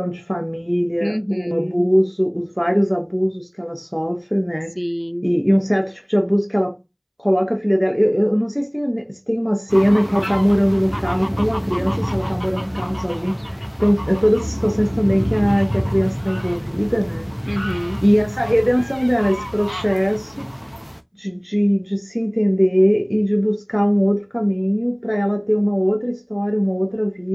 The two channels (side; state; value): both; identical; correlation 1.00